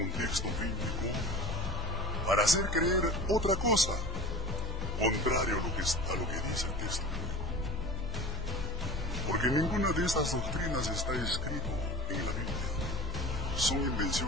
un texto bíblico para hacer creer otra cosa, contrario a lo que dice el texto bíblico. Porque ninguna de estas doctrinas está escrito en la Biblia. Son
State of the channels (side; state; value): both; normal; correlation 0.44